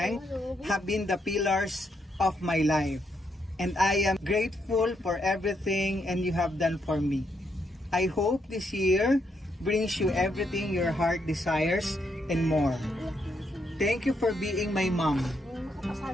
have been the pillars of my life. And I am grateful for everything and you have done for me. I hope this year brings you everything your heart desires and more. Thank you for being my mom.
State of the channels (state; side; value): normal; both; correlation 0.77